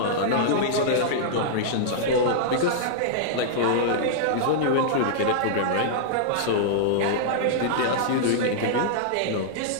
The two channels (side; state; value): both; different; correlation -0.02